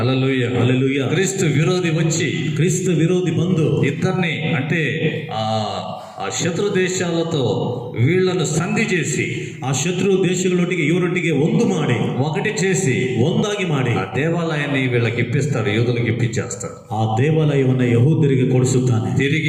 హల్లెలూయా. క్రీస్తు విరోధి వచ్చి, ಕ್ರಿಸ್ತ ವಿರೋಧಿ ಬಂದು ఇద్దరిని అంటే ఆ శత్రు దేశాలతో వీళ్లను సంధి చేసి, ಆ ಶತ್ರು ದೇಶಗಳೊಟ್ಟಿಗೆ ಇವರೊಟ್ಟಿಗೆ ಒಂದು ಮಾಡಿ, ఒకటి చేసి, ಒಂದಾಗಿ ಮಾಡಿ ఆ దేవాలయాన్ని వీళ్ళకి ఇప్పిస్తాడు, యూదులకు ఇప్పించేస్తాడు. ಆ ದೇವಾಲಯವನ್ನು ಯಹೂದ್ಯರಿಗೆ ಕೊಡಿಸುತ್ತಾನೆ.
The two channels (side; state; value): both; identical; correlation 1.00